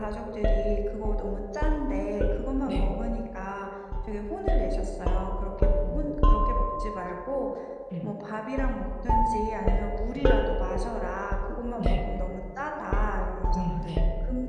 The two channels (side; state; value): both; identical; correlation 1.00